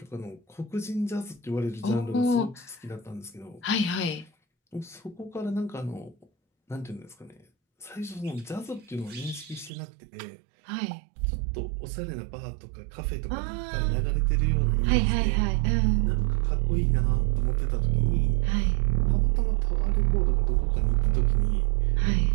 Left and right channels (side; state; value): left; drops out; at 9.7 s